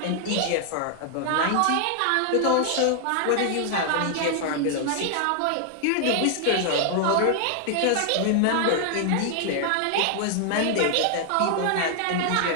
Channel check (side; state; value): both; different; correlation 0.00